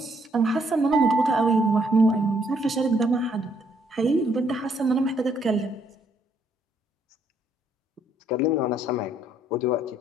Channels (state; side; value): normal; both; correlation 0.69